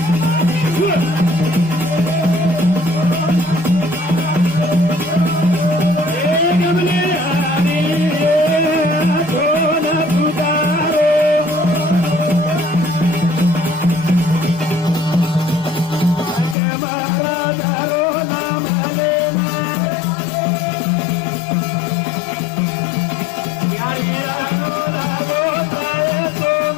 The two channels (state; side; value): drops out; right; at 16.6 s